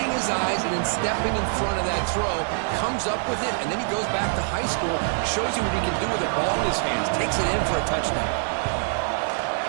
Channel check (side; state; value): left; silent; 55 dB below the other